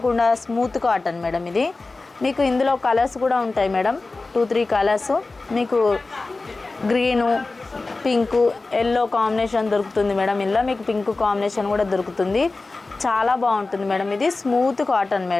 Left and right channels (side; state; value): right; quieter; 3.5 dB